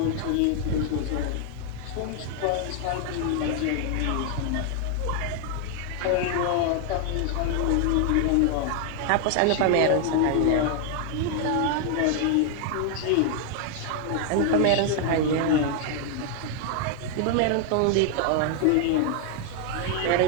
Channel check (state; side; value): different; both; correlation 0.00